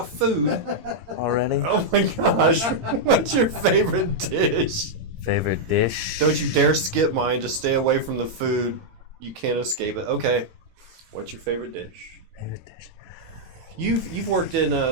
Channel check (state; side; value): late; left; 17 ms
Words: food? Already? Oh my gosh. What's your favorite dish? Favorite dish? Don't you dare skip mine. Just stay away from the food. You can't escape it. Okay. What's your favorite dish? Favorite dish. You've worked in